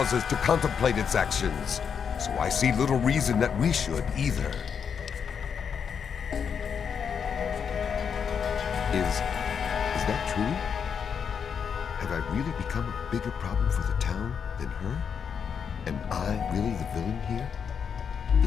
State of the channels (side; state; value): right; quieter; 6.9 dB